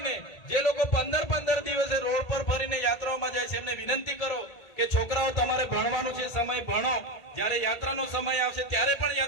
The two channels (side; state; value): right; late; 1.8 ms